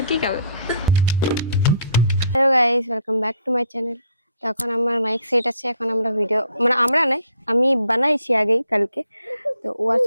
কি খাবে। Hello guys, welcome back to my channel. তো এখন আমার মাইক সেট আছে, এখন আমরা ভিডিও মানে আমরা নাই, আমি বানাইছি আগেই কালকে। তো ওয়ার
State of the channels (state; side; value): inverted; both; correlation -0.63